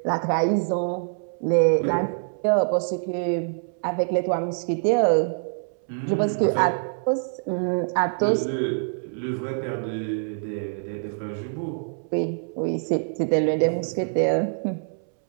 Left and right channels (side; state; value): left; silent; 62 dB below the other